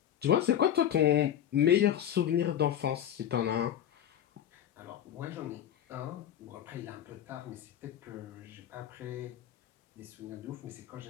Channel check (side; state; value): right; quieter; 10.4 dB